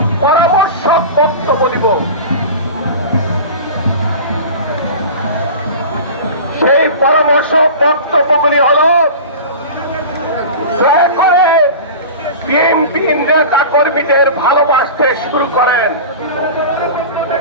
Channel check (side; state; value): both; inverted; correlation -0.33